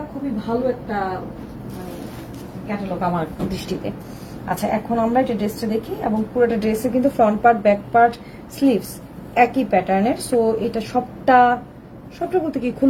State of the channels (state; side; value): identical; both; correlation 1.00